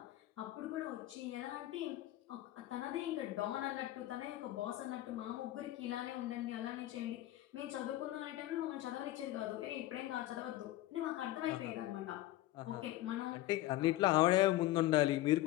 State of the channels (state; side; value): quieter; right; 15.5 dB